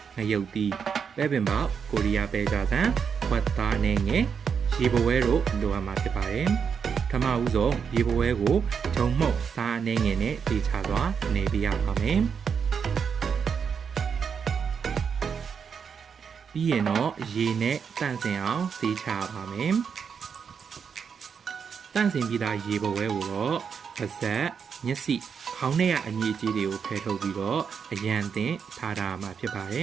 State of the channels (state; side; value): quieter; left; 6.6 dB